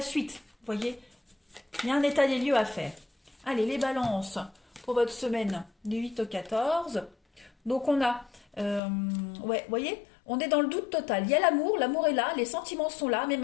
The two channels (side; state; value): right; drops out; at 8.8 s